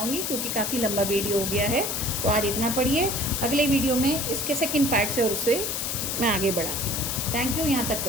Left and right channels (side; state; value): left; noise; hiss, 2 dB below the sound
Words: क्योंकि काफ़ी लंबा वीडियो हो गया है। तो आज इतना पढ़िए, अगले वीडियो में इसके सेकंड पार्ट से और उससे मैं आगे बढ़ाती हूँ। थैंक यू, यहाँ तक